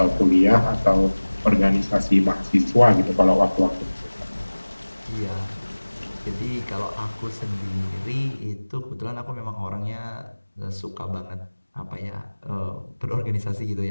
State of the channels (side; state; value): both; inverted; correlation -1.00